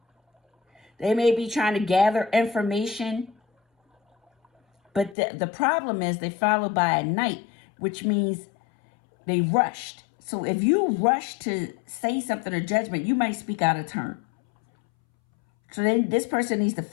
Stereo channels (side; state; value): right; drops out; at 5.2 s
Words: They may be trying to gather information, but the problem is they followed by a Knight, which means they rushed. So if you rush to say something or judgment, you might speak out of turn. So then this person needs to